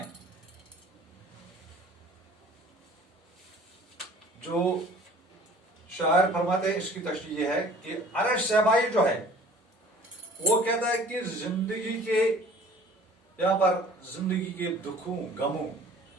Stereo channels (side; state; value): both; normal; correlation 0.49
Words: जो शायर फरमाते हैं, इसकी तशरीह ये है कि अरश शहबाई जो है वो कहता है कि जिंदगी के यहां पर जिंदगी के दुखों गमों